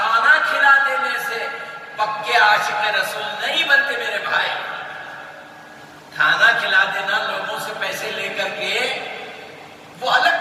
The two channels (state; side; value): identical; both; correlation 1.00